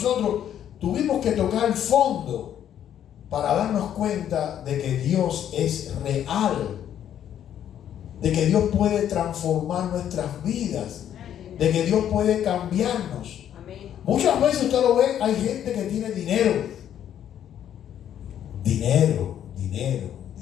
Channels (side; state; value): right; quieter; 10.2 dB